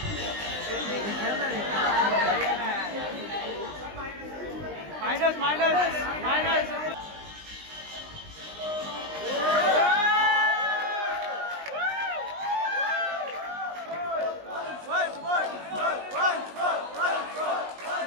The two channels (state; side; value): late; left; 19 ms